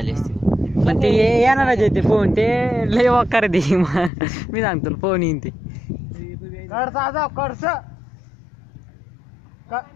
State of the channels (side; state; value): right; drops out; at 4.1 s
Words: असती पण ते येणारच आहे ते फोन ते लय वकार दे मी सांगतो फोन येईन ते कडसा जाव कडस